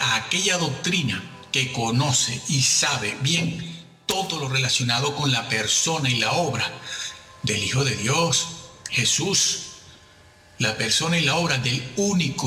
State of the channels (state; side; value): identical; both; correlation 1.00